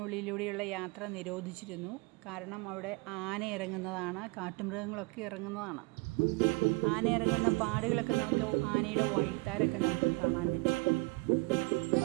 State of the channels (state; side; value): quieter; left; 26.3 dB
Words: യാത്ര നിരോധിച്ചിരുന്നു. കാരണം അവിടെ ആന ഇറങ്ങുന്നതാണ്, കാട്ടുമൃഗങ്ങളൊക്കെ ഇറങ്ങുന്നതാണ്. ആന ഇറങ്ങുന്ന പാടുകളൊക്കെ നമുക്ക്, ആനയുടെ വഴിത്താരൊക്കെ നമുക്ക് കാണാൻ പറ്റും.